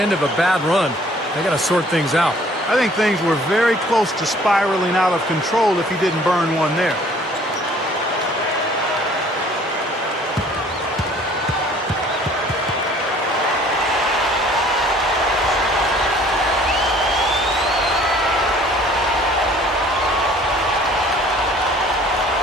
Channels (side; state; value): both; normal; correlation 0.55